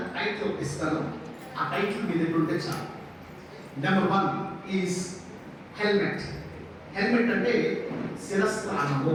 టైటిల్ ఇస్తాను. ఆ టైటిల్ మీ దగ్గర ఉంటే చాలు. Number 1 is helmet. హెల్మెట్ అంటే శిరస్త్రాణము,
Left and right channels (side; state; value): both; identical; correlation 1.00